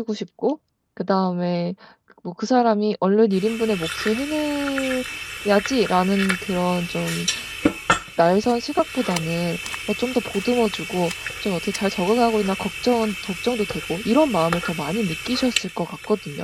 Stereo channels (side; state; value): both; identical; correlation 1.00